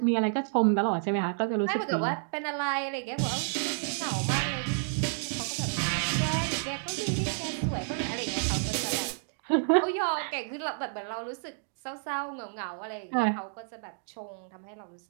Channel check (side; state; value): left; silent; digital silence